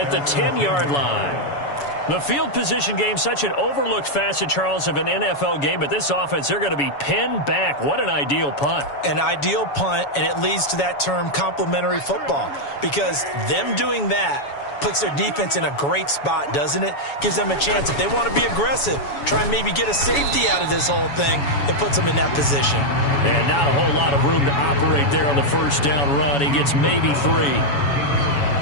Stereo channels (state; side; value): late; right; 7.1 ms